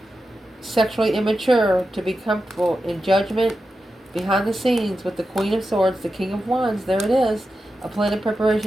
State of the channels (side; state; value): both; normal; correlation 0.90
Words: sexually immature, to be comfortable in judgment, behind the scenes with the Queen of Swords, the King of Wands. There it is. A plan of